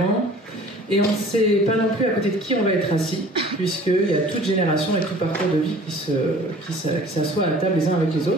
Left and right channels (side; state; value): both; normal; correlation 0.48